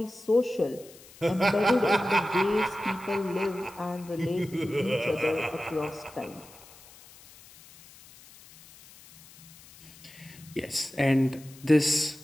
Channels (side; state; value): left; noise; hiss, 22 dB below the sound